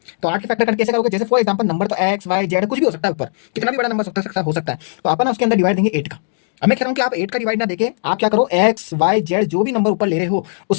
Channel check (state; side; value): silent; right; digital silence